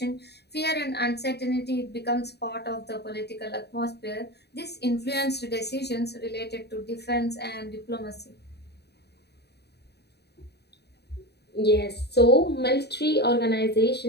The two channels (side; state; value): right; late; 0.48 ms